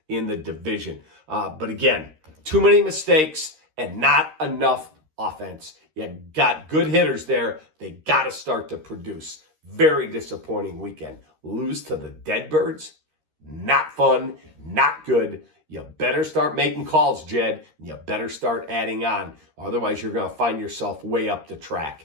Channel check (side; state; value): left; late; 13 ms